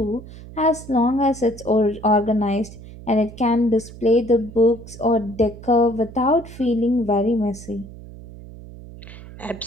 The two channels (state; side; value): noise; right; hum, 16 dB below the sound